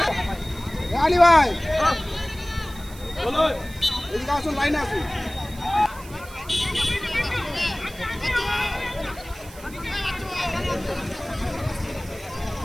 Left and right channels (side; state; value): right; noise; hiss, 19 dB below the sound